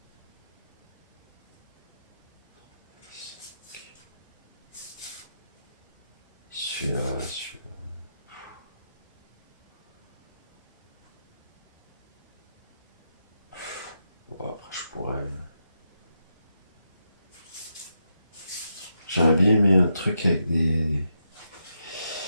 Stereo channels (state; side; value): inverted; both; correlation -0.83